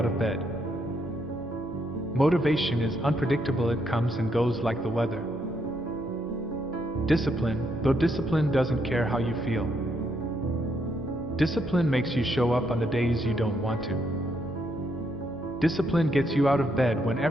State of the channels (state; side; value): normal; both; correlation 0.76